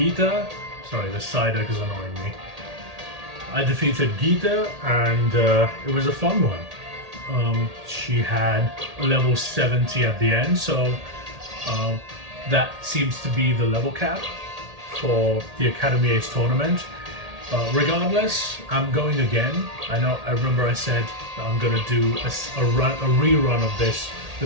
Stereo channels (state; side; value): late; left; 1.8 ms